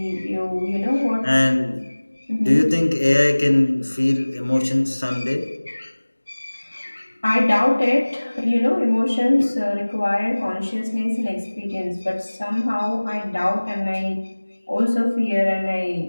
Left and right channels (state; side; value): inverted; both; correlation -1.00